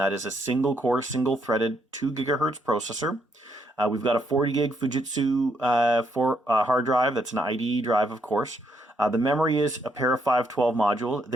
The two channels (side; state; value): both; normal; correlation 0.74